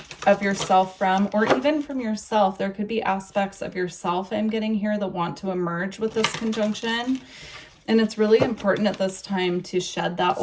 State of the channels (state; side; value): identical; both; correlation 1.00